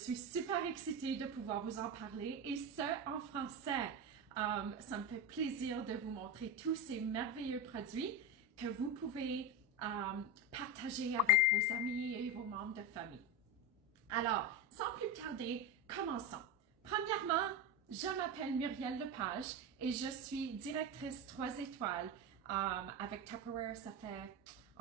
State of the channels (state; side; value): normal; both; correlation 0.17